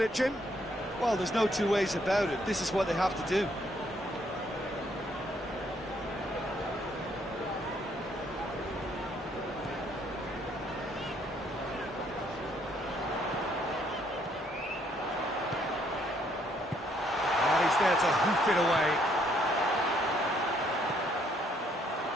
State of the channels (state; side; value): normal; both; correlation 0.69